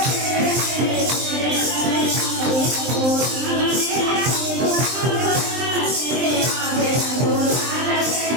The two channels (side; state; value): left; late; 23 ms